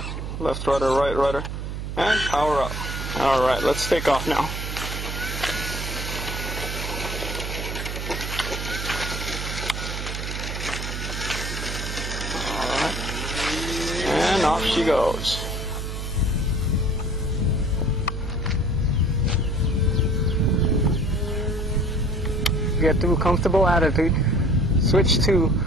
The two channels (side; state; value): right; noise; hum, 5 dB below the sound